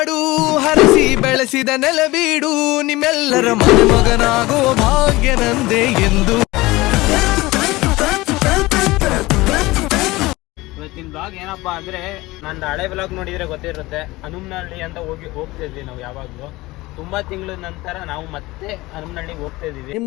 ಹರಸಿ ಬೆಳೆಸಿದ ನೆಲಬೀಡು, ನಿಮ್ಮೆಲ್ಲರ ಮನೆ ಮಗನಾಗೋ ಭಾಗ್ಯ ನಂದೆ ಎಂದು. ಇವತ್ತಿನ ಬ್ಲಾಗ್ ಏನಪ್ಪಾ ಅಂದ್ರೆ, ನಂದು ಹಳೆ ಬ್ಲಾಗ್ ನೋಡಿದ್ರೆ ಗೊತ್ತಿರುತ್ತೆ. ಹನುಮನಹಳ್ಳಿ ಅಂತ ಹೋಗ್ತಿದ್ವಿ ನಾವು ಯಾವಾಗ್ಲೂ. ತುಂಬಾ ತಿಂಗಳ ನಂತರ ನಾವು ಮತ್ತೆ ಹನುಮನಹಳ್ಳಿಗೆ ಹೋಗ್ತಾ ಇದೀವಿ.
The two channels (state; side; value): quieter; right; 20.2 dB